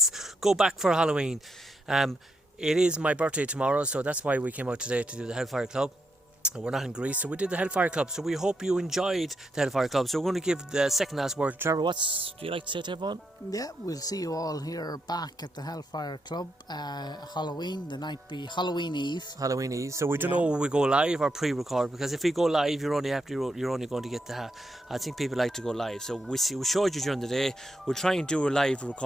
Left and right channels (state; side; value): normal; both; correlation 0.81